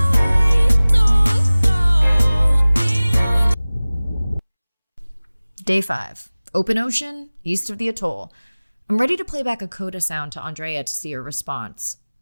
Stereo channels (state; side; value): inverted; both; correlation -0.99